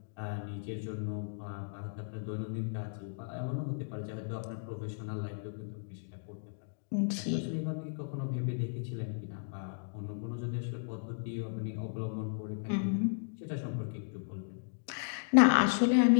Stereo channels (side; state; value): right; silent; digital silence